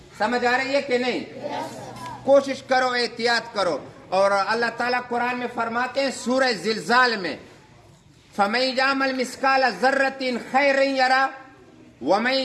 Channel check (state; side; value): identical; both; correlation 1.00